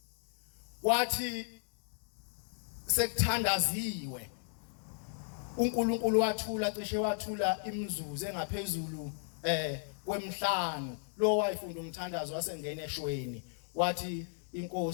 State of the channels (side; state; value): right; silent; digital silence